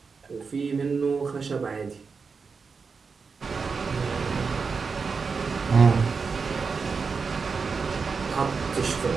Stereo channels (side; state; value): left; quieter; 5.1 dB